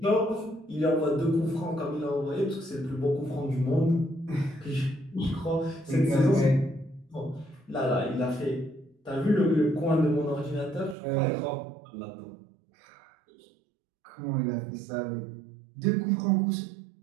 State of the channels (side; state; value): left; drops out; at 11.0 s